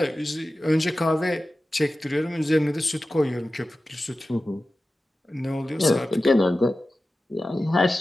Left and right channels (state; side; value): normal; both; correlation 0.94